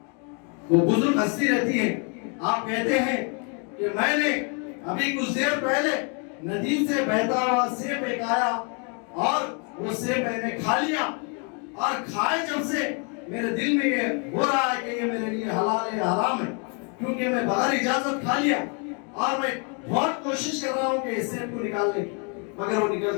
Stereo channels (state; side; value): quieter; right; 37.1 dB